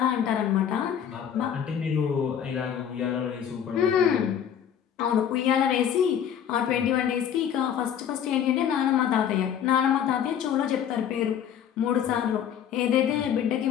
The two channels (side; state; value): right; quieter; 9.0 dB